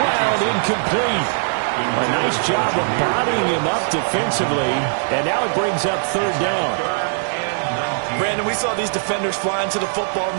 incomplete. A nice job of bodying him up defensively. And now it brings up 3rd down. Brandon, we saw these defenders flying to the football in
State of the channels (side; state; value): left; silent; digital silence